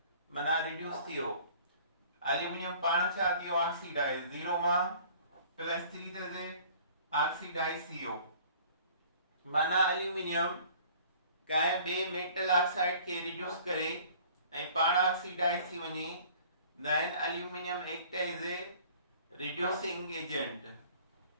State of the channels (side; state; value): both; inverted; correlation -0.51